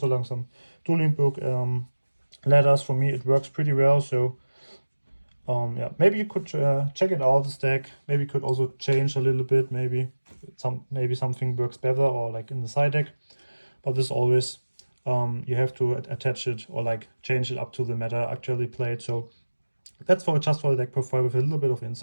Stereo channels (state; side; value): inverted; both; correlation -1.00